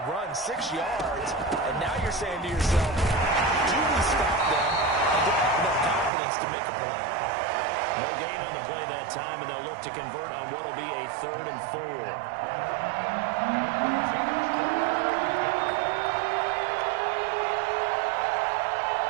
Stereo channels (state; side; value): drops out; left; at 6.1 s